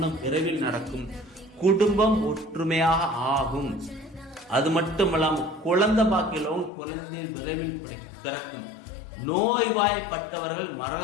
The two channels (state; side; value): drops out; right; at 6.7 s